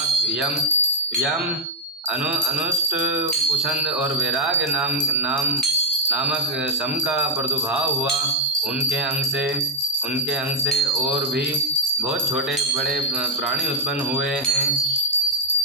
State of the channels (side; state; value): both; normal; correlation -0.02